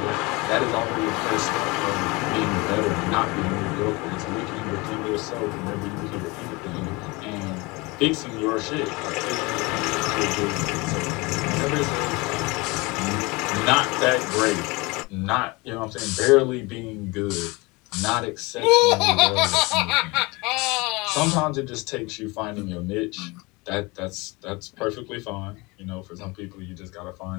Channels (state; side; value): quieter; right; 25.1 dB